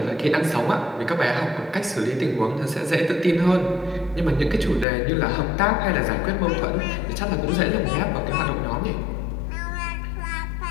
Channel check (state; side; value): drops out; right; at 4.9 s